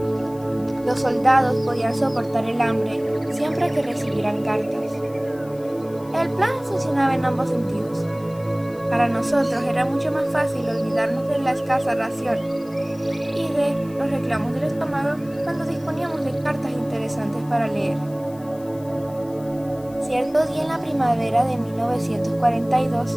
Los soldados podían soportar el hambre siempre que recibieran cartas. El plan funcionaba en ambos sentidos. Para nosotros era mucho más fácil olvidarnos de la escasa ración y de los reclamos del estómago cuando disponíamos de cartas interesantes para leer. Cierto día en la primavera de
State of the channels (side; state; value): left; noise; hiss, 25 dB below the sound